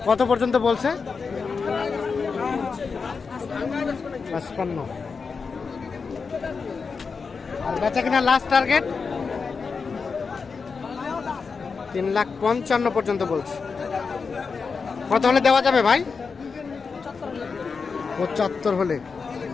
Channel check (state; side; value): quieter; right; 5.1 dB